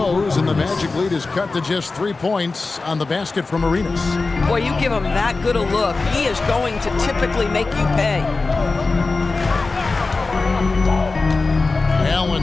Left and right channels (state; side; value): quieter; right; 3.8 dB